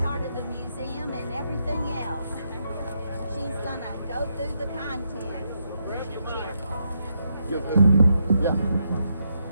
of the museum and everything else. She's gonna go through the contents. Yeah.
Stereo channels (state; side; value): inverted; both; correlation -0.80